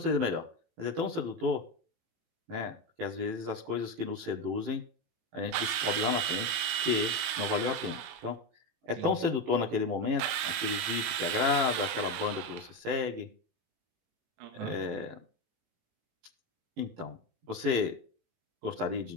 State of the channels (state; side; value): late; left; 18 ms